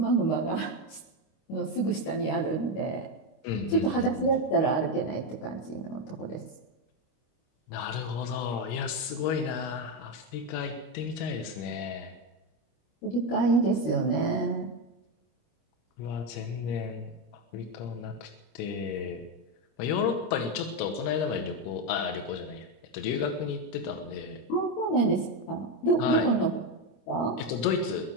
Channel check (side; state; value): right; late; 25 ms